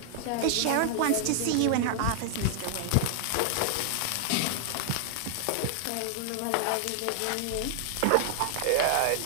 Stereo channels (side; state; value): both; different; correlation -0.01